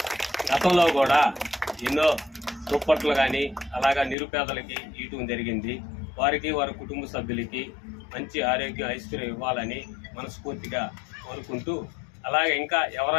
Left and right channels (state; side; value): drops out; right; at 4.2 s